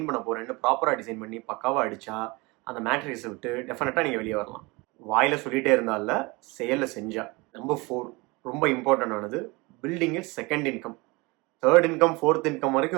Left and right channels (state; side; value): quieter; left; 25.1 dB